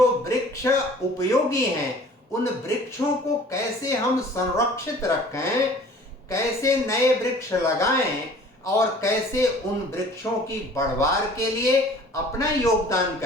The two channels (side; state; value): both; normal; correlation 0.49